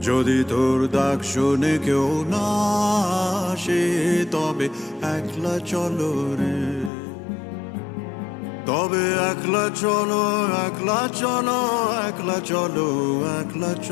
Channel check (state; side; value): drops out; right; at 6.9 s